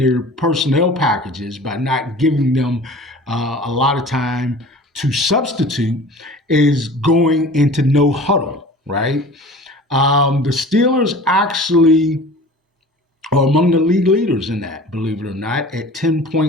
personnel packages by not giving them a lot of time to substitute is going into no huddle, right? The Steelers actually are among the league leaders in that, believe it or not, at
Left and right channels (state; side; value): normal; both; correlation 0.42